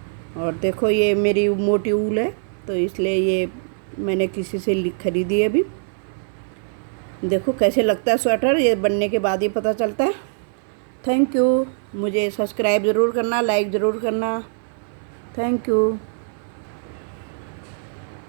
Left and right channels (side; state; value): left; silent; 60 dB below the other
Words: और देखो ये मेरी मोटी ऊल है तो इसलिए ये मैंने किसी से खरीदी है अभी। देखो कैसे लगता है स्वेटर, ये बनने के बाद ही पता चलता है। Thank you. मुझे सब्सक्राइब ज़रूर करना, लाइक ज़रूर करना। Thank you.